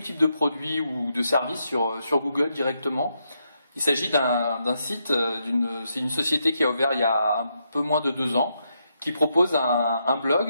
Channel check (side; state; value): both; inverted; correlation -0.80